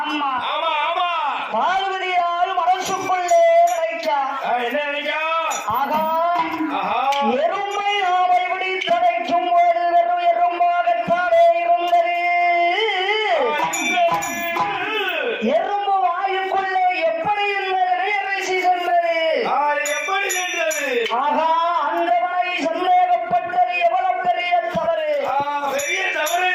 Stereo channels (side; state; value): both; identical; correlation 1.00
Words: பார்வதியால் மனசுக்குள்ளே நினைச்சா. ஆகா, எறும்பை நாம் இப்படி தடைக்கும் போது வெறும் எறும்பாகத்தானே இருந்தது. எறும்பு வாயுக்குள்ளே எப்படி இந்த திரையரிசி சென்றது? ஆகா, அந்தவனை சந்தேகப்பட்டது எவ்வளவு பெரிய தவறு.